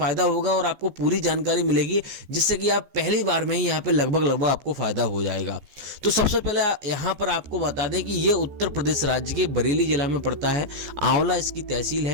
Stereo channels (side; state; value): left; late; 14 ms